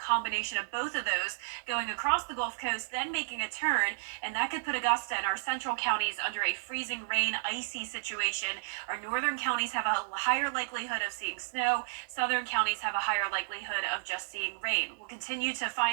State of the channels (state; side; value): silent; left; digital silence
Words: of both of those, going across the Gulf Coast, then making a turn, and that could put Augusta and our central counties under a freezing rain, icy situation. Our northern counties have a higher likelihood of seeing snow. Southern counties have a higher likelihood of just seeing rain. We'll continue to